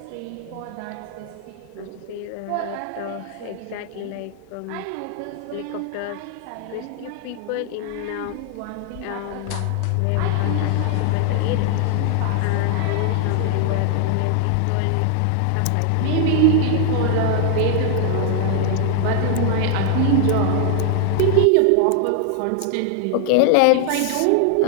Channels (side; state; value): both; different; correlation 0.00